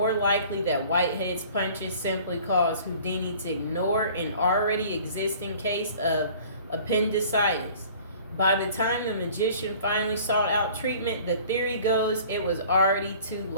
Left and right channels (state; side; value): inverted; both; correlation -0.49